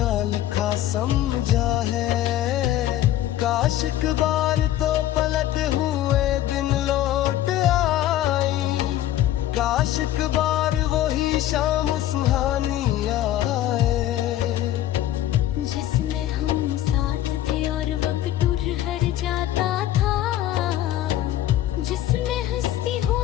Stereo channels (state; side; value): quieter; right; 13.0 dB